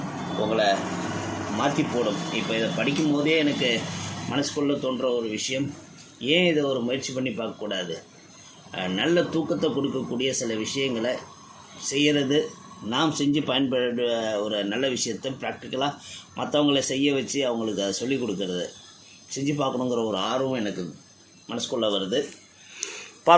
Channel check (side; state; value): both; identical; correlation 1.00